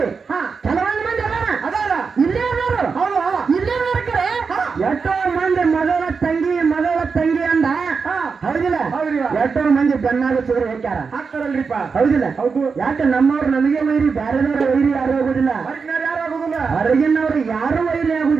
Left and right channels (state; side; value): quieter; left; 5.2 dB